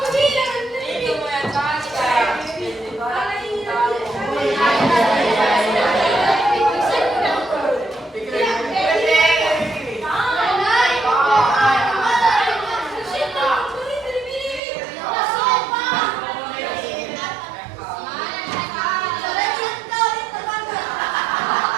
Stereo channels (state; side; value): drops out; left; at 14.6 s